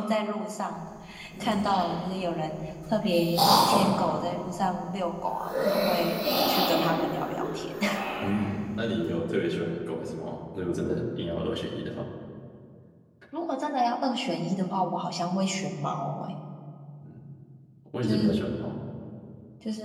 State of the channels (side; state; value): both; identical; correlation 1.00